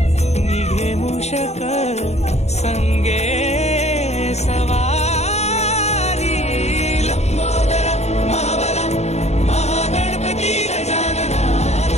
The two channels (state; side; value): late; right; 0.32 ms